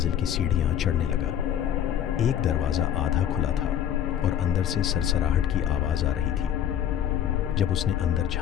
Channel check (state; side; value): quieter; right; 10.0 dB